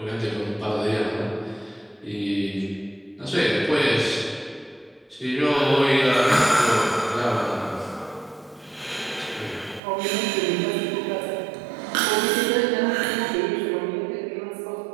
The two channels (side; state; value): left; drops out; at 9.8 s